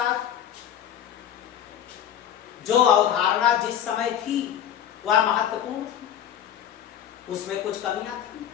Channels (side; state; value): right; quieter; 10.0 dB